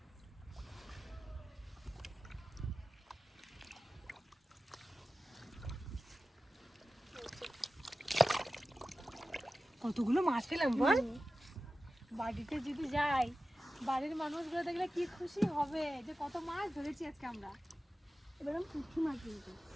কতগুলো মাছ পেলাম বল। বাড়িতে যদি যাই, বাড়ির মানুষগুলো দেখলে কি খুশি হবে যে কত মাছ ধরেছি আজকে আমরা। এবার পুঁটি মাছ কিন্তু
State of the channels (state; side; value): normal; both; correlation 0.94